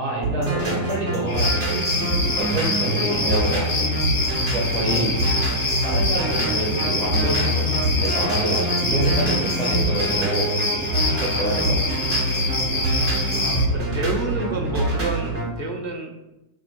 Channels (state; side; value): late; right; 2.0 ms